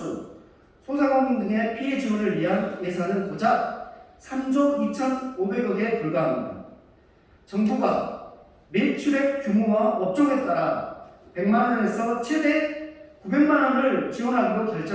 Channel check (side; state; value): both; identical; correlation 1.00